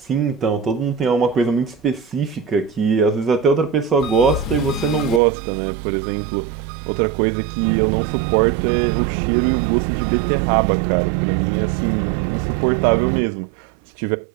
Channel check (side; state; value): left; drops out; at 5.2 s